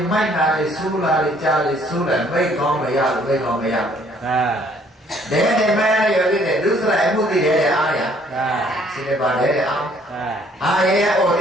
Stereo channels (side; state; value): both; normal; correlation 0.62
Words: là li su là mấy con mày à để mai điều gì đấy lúc sau em muốn đi để ai à xin bà để ăn ai ô